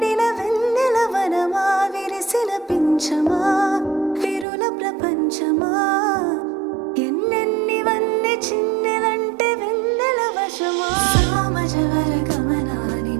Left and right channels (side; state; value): left; drops out; at 4.5 s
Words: వెన్నెల వనమా విరిసిన పించమా విరుల ప్రపంచమా ఎన్నెన్నివన్నీ చిన్నెలంటే వెన్నెల వశమా సామజవర గమనా